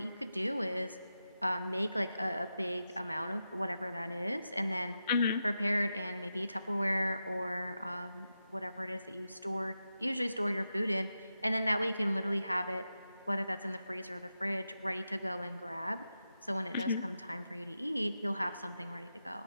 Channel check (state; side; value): inverted; both; correlation -0.89